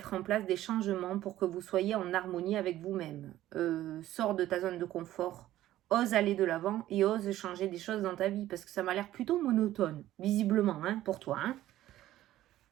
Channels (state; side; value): quieter; left; 14.0 dB